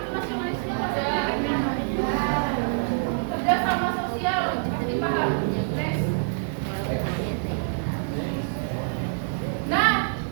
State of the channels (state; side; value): silent; left; 61 dB below the other